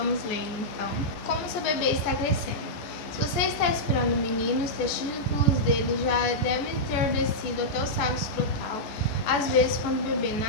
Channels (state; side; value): late; right; 14 ms